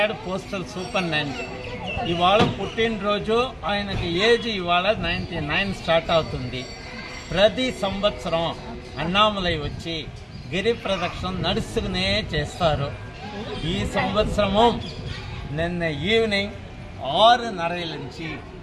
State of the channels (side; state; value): both; identical; correlation 1.00